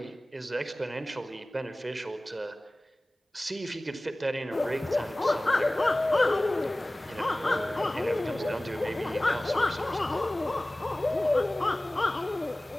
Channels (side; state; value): both; normal; correlation 0.98